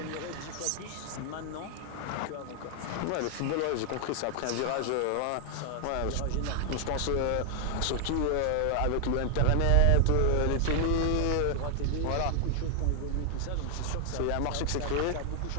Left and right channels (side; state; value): both; different; correlation 0.00